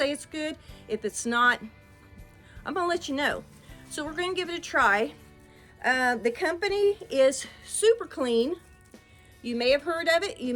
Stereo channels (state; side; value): identical; both; correlation 1.00